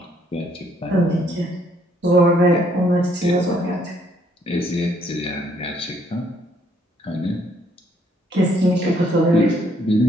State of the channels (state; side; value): normal; both; correlation 0.67